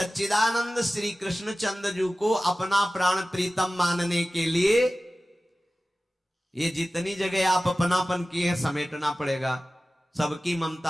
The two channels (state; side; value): normal; both; correlation 0.96